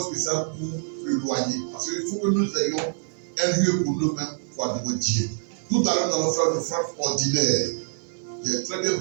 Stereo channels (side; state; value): left; silent; 61 dB below the other